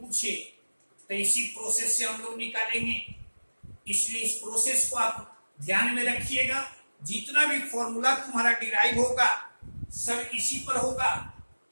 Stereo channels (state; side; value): inverted; both; correlation -1.00